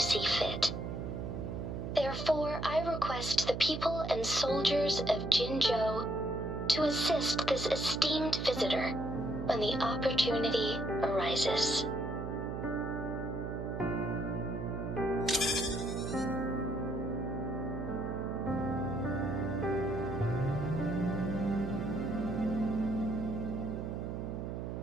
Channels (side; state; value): right; noise; hum, 5 dB below the sound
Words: fit. Therefore, I request the people and soldiers of Jinzhou to assist this esteemed visitor when the opportunity arises.